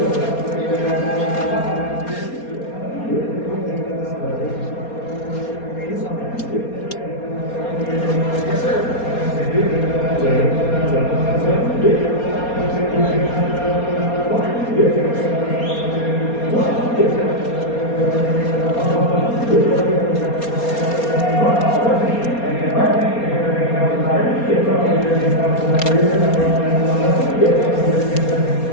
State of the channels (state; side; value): late; right; 4.3 ms